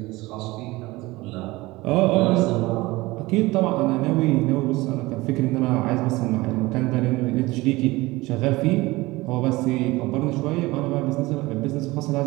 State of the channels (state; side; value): quieter; left; 20.6 dB